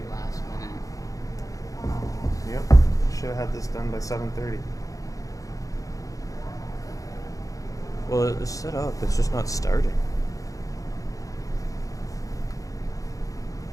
last minute. Yep. Should have had this done by 7:30. Well, it's set up. It's just not starting.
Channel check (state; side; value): late; right; 0.17 ms